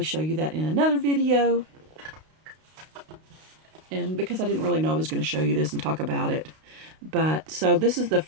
show you that in another video. And because I didn't really know I was going to show you this and talk about it. But, so this is the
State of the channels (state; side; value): late; left; 32 ms